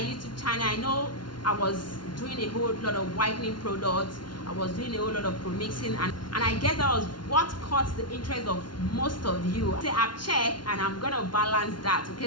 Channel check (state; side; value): late; right; 0.71 ms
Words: channel. I know I was doing a whole lot of whitening products, I was doing a whole lot of pro-mixing, and I guess that was what caught the interest of most of you. So I've checked and I'm gonna balance that.